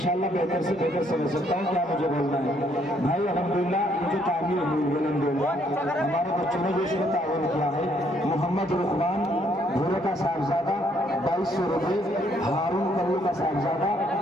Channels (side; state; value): both; normal; correlation 0.68